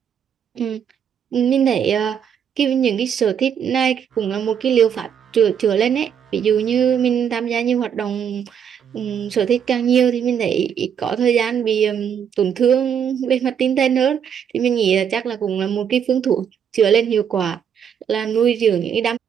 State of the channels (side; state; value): left; quieter; 8.1 dB